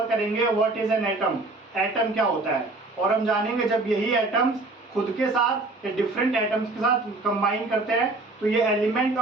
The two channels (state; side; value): quieter; left; 3.1 dB